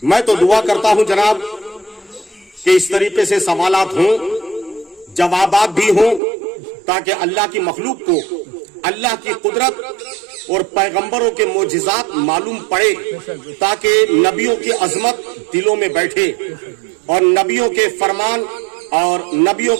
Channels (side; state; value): left; drops out; at 6.2 s